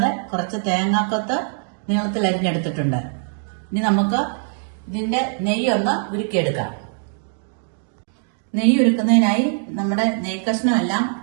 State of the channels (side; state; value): left; silent; 62 dB below the other